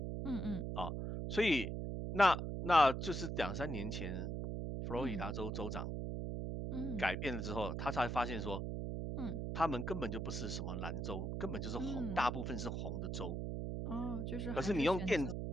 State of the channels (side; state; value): right; noise; hum, 3 dB below the sound